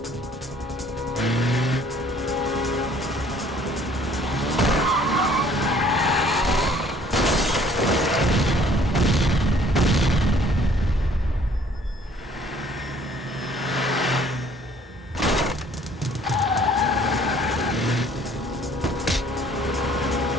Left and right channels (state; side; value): normal; both; correlation 0.57